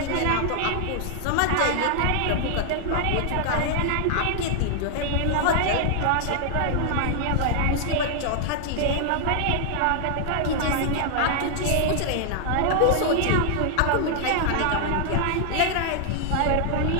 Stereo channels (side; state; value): both; different; correlation 0.00